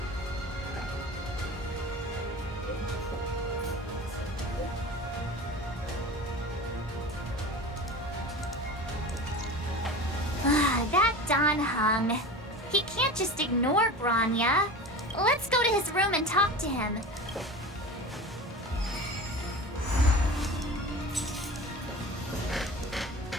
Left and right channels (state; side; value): normal; both; correlation 0.33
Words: That Don Hung. He can't just ignore Bronya. Let's go to his room and talk to him.